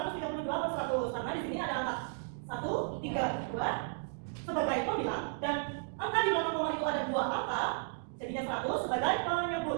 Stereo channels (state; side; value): silent; left; digital silence